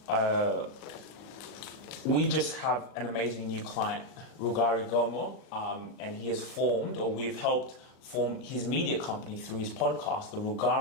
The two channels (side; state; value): right; late; 39 ms